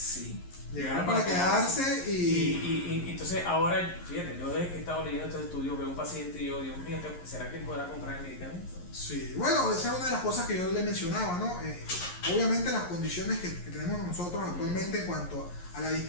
Llegaron para quedarse y entonces ahora, fíjate, yo desde que he estado leyendo estos estudios veo un paciente y yo, Dios mío, ¿será que él podrá comprar el medicamento? Sí, bueno, esa es una de las cosas que yo le mencionaba, ¿no? Obviamente las condiciones que tenemos nosotros actualmente en cuanto a la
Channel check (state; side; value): late; right; 11 ms